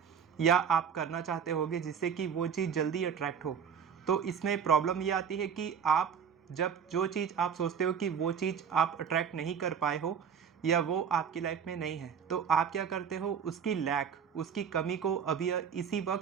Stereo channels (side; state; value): left; quieter; 7.3 dB